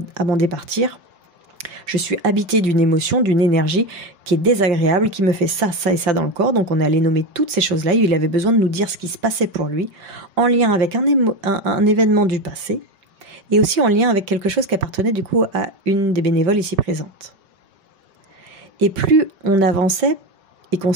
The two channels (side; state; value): left; late; 5.3 ms